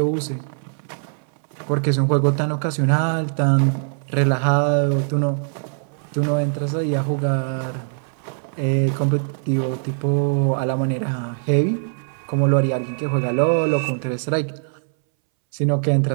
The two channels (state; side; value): silent; left; 63 dB below the other